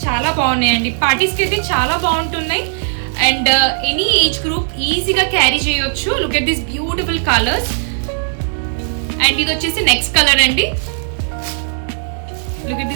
చాలా బాగున్నాయండి. పార్టీస్కి అయితే చాలా బాగుంటున్నాయి అండ్ ఎనీ ఏజ్ గ్రూప్ ఈజీగా క్యారీ చేయొచ్చు. Look at this beautiful colours. And ఇది వచ్చేసి నెక్స్ట్ కలర్ అండి. Look at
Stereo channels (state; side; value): silent; left; digital silence